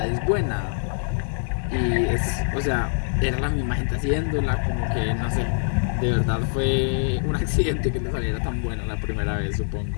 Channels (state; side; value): silent; right; digital silence